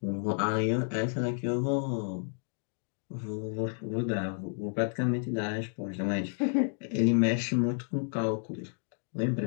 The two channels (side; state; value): right; silent; 55 dB below the other